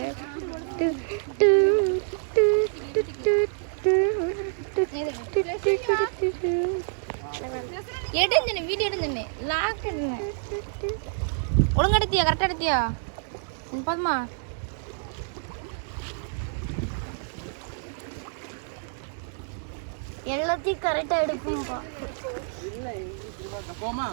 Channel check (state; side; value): silent; left; digital silence